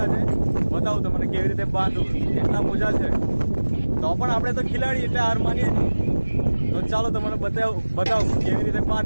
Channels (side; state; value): both; inverted; correlation -1.00